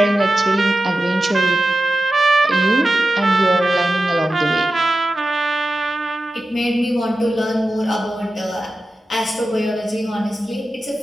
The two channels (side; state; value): both; normal; correlation 0.93